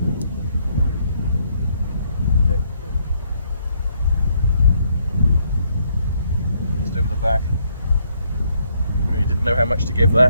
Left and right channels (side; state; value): both; inverted; correlation -0.71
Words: Just over the back. Really didn't know how much to give